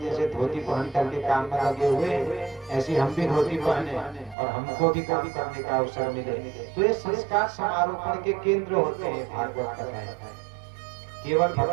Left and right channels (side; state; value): left; drops out; at 4.4 s